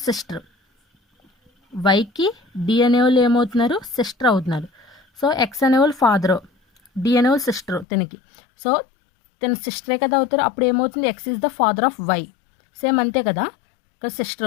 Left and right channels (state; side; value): drops out; right; at 7.9 s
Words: sister. వైకి డి అనేవాళ్ళు ఏమవుతున్నారు, సిస్టర్ అవుతున్నారు. సో ఎక్స్ అనేవాళ్ళు ఫాదరు, డి అనేవాళ్ళు సిస్టరు తినకి. సో తన సిస్టరే కదా అవుతారు. అప్పుడు ఏమవుతుంది, X is the father of Y. Same అంతే కదా, ఇక్కడ